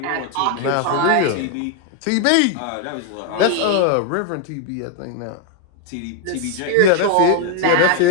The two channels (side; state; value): both; different; correlation 0.00